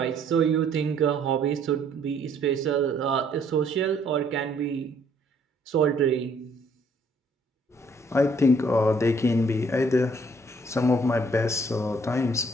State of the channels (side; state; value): both; normal; correlation 0.63